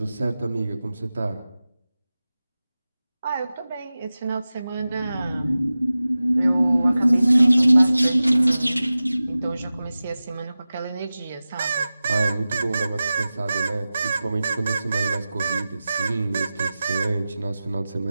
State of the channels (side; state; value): both; inverted; correlation -0.96